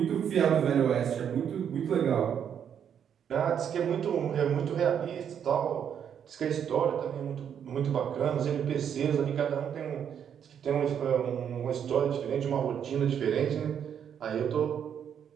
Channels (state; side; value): quieter; left; 8.4 dB